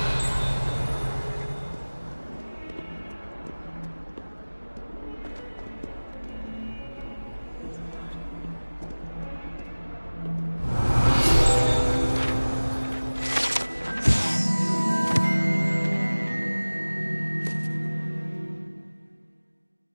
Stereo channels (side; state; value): both; inverted; correlation -1.00